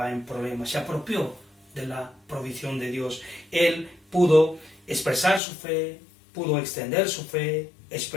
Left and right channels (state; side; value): drops out; right; at 5.4 s